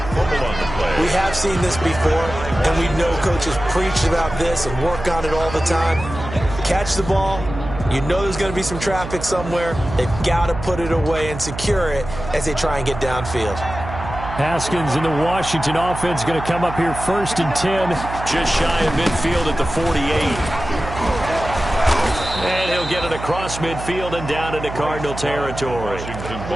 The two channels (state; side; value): noise; right; hum, 9 dB below the sound